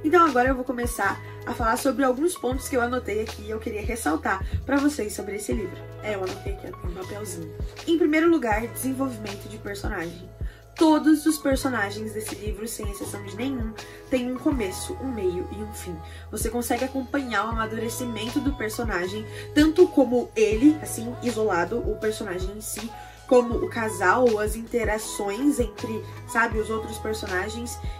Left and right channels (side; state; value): both; identical; correlation 1.00